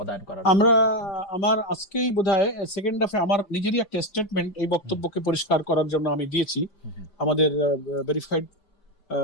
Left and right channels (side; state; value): right; late; 5.0 ms